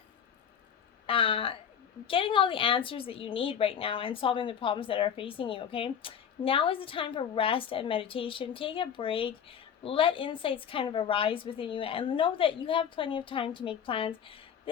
all the answers that you need right now and solving the problems that are facing you, okay? Now is the time for rest and meditation. Take a break. Let insights kind of arise within you, and know that you have plenty of time to make plans.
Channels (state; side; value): quieter; right; 8.1 dB